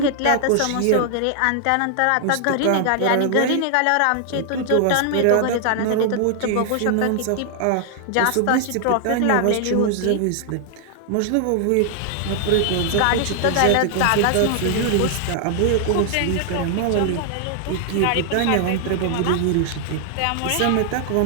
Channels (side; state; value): both; different; correlation 0.00